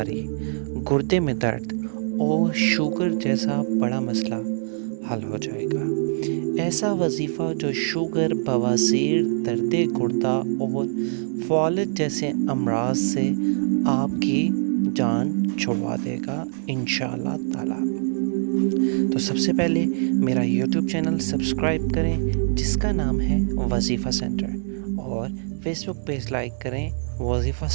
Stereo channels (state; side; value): silent; left; 63 dB below the other